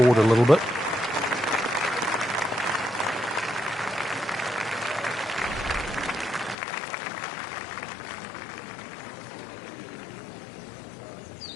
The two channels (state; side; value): drops out; right; at 6.6 s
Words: a little bit.